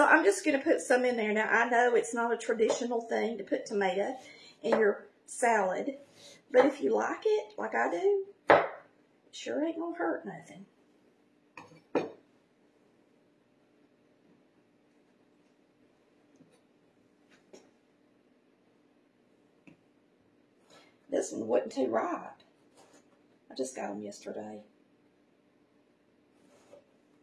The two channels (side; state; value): both; identical; correlation 1.00